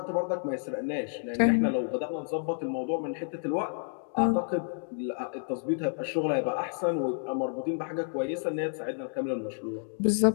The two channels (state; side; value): silent; right; digital silence